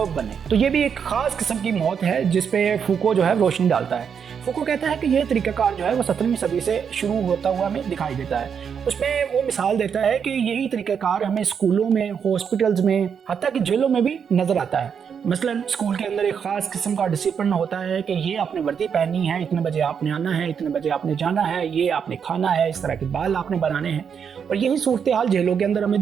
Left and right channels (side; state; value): left; quieter; 7.1 dB